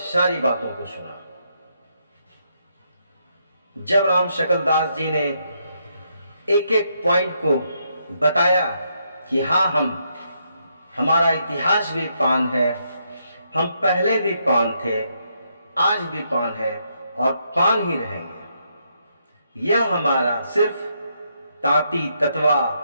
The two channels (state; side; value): inverted; both; correlation -0.77